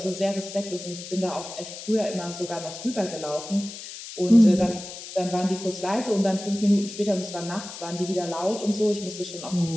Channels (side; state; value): left; noise; hiss, 12 dB below the sound